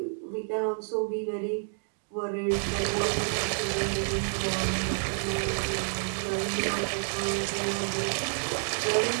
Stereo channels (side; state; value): left; silent; 58 dB below the other